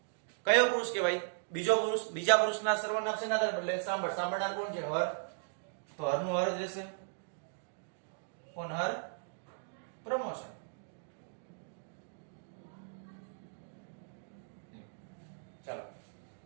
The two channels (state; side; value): silent; left; digital silence